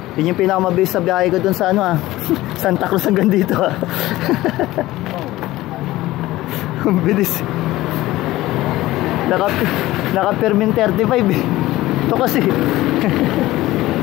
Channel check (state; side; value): quieter; right; 17.0 dB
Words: Yun yung pinakamabilis sa biyahe ko dun sa Santa Cruz hanggang dito Ang bilis. Naka-permin 35 eh. Ito kasi